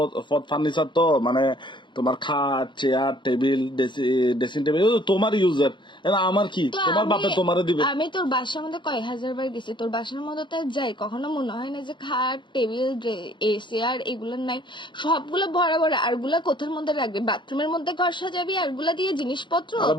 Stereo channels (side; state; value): right; late; 0.23 ms